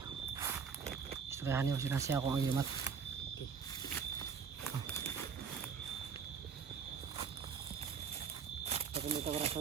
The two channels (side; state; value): left; quieter; 6.3 dB